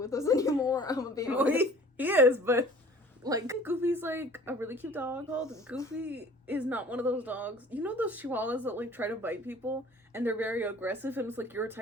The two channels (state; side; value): normal; both; correlation 0.48